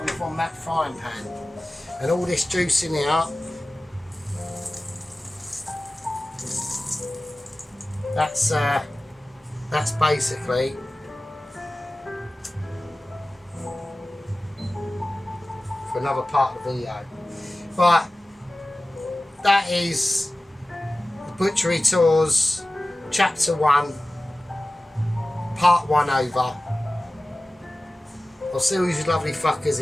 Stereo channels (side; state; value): both; normal; correlation 0.96